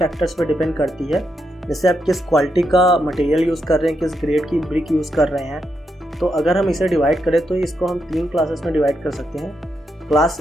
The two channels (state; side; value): normal; both; correlation 0.82